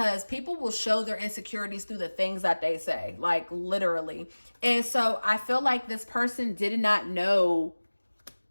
people will show their insecurities through the things that they say, like literally. And so I feel like this person did not know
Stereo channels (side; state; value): both; inverted; correlation -1.00